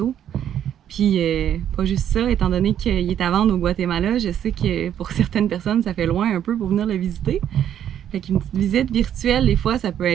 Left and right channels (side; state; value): left; quieter; 10.1 dB